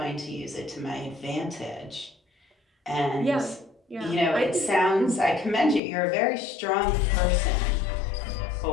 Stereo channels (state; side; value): drops out; right; at 5.8 s